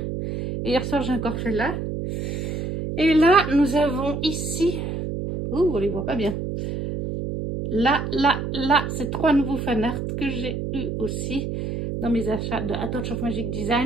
Et hier soir, j'ai encore fait là. Et là, nous avons ici... Oh, on les voit pas bien. Là, c'est 3 nouveaux fanarts que j'ai eu aussi dans mes achats de A Touch of Magic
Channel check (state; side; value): noise; right; hum, 4 dB below the sound